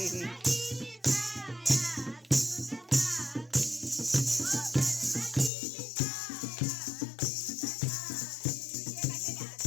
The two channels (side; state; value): right; drops out; at 5.5 s